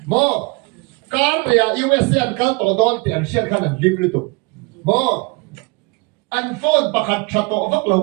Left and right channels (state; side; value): quieter; left; 27.8 dB